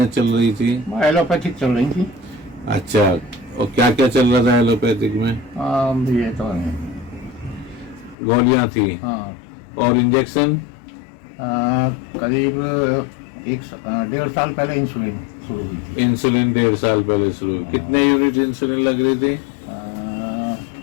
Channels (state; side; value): drops out; right; at 8.2 s